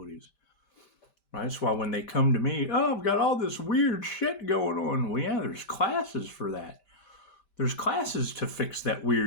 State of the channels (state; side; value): late; right; 5.1 ms